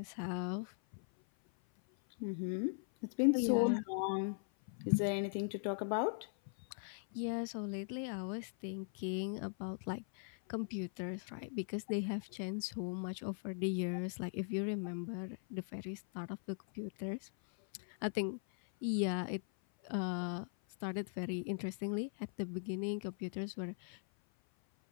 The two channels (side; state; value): right; silent; 51 dB below the other